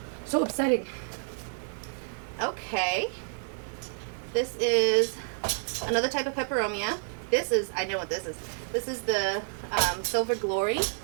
upsetting. Okay. This is another type of peperomia. This is, I know what this is. This is the Silver Glory.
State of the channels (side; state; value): left; silent; digital silence